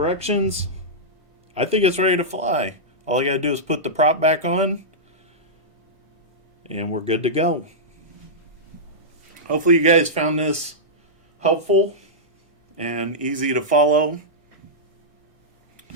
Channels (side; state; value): left; late; 1.6 ms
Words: I think it's ready to fly. All I gotta do is put the prop back on, and we're good to go. Hopefully you guys found this helpful and easy to follow.